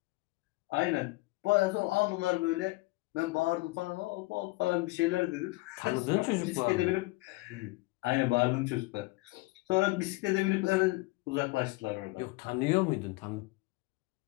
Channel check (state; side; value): quieter; right; 22.6 dB